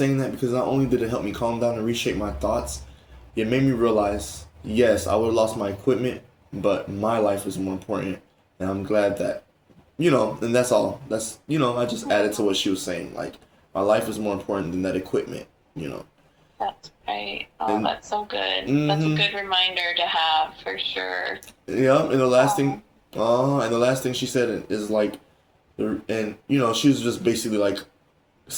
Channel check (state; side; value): identical; both; correlation 1.00